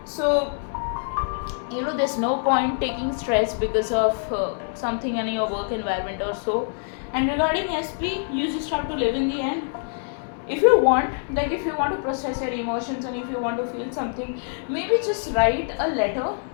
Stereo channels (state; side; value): silent; right; digital silence